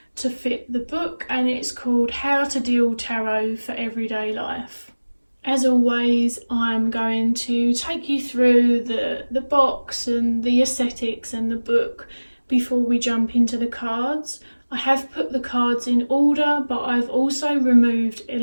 to fit the book, and it's called How to Deal Tarot for Everyday Life. As always, I'm going to take you through the box and the aesthetics and the book before we jump into the cards. I have put the cards in order, but I've also removed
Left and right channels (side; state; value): both; inverted; correlation -1.00